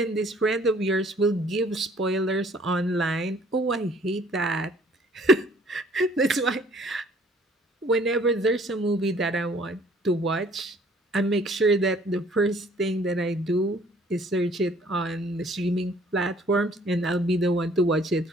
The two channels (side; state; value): both; normal; correlation 0.57